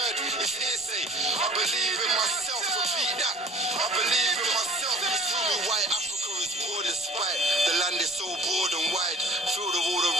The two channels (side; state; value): both; normal; correlation 0.48